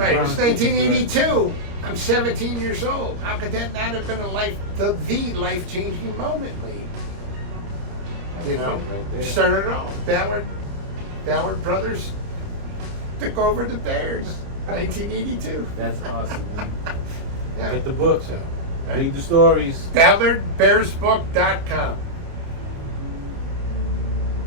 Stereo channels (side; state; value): left; late; 30 ms